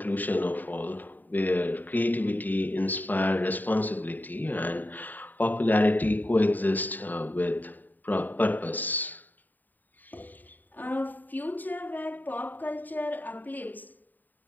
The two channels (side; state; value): right; late; 0.088 ms